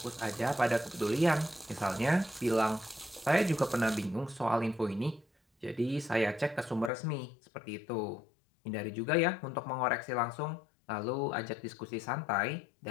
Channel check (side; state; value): right; drops out; at 6.9 s